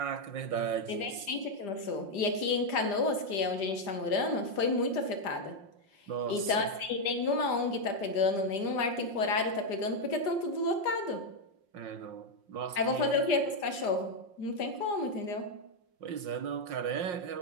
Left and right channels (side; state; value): left; late; 5.6 ms